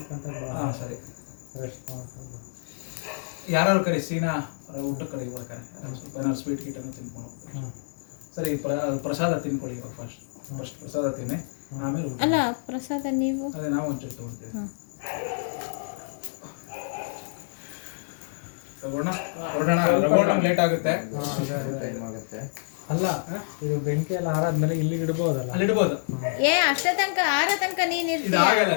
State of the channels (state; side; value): silent; right; digital silence